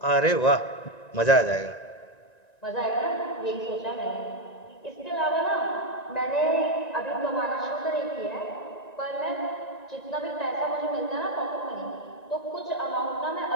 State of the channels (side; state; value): right; late; 1.9 ms